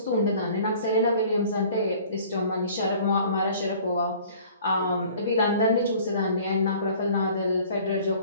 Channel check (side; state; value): both; inverted; correlation -0.51